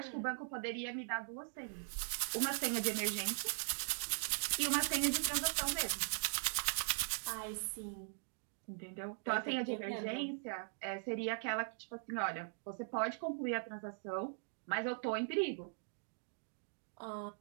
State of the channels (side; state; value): left; silent; digital silence